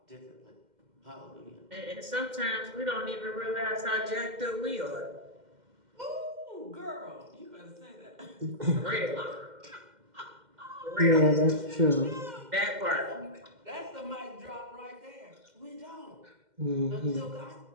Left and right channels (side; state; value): left; late; 2.1 ms